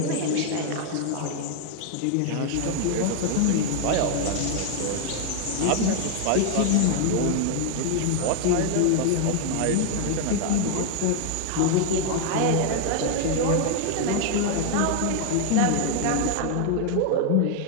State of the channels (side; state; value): both; different; correlation 0.00